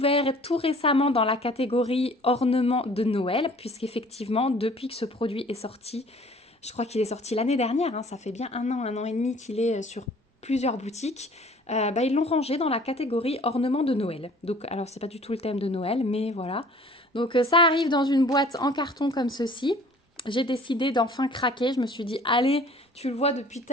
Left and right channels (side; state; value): both; normal; correlation 0.51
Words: tout récemment dans la catégorie ornement de Noël. Puisqu'effectivement, depuis que ce produit est sorti, je crois qu'il est sorti l'année dernière. Hein, ça fait bien un an et demi qu'il est sur plusieurs boutiques. Ils l'ont rangé dans la catégorie ornement de Noël. Donc, alors, c'est pas du tout le thème de Noël, mais voilà. Donc, ça arrive dans une boîte en carton comme ceci. J'ai décidé d'enfin craquer. Je me suis dit, allez, tu le vois depuis